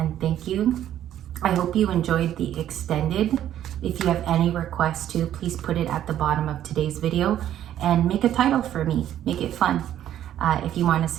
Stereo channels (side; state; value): left; quieter; 11.4 dB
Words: thank you. I hope you enjoyed the extended. If you have any requests too, please put it at the bottom of today's video. and make a title for me. Make it fun. If you want a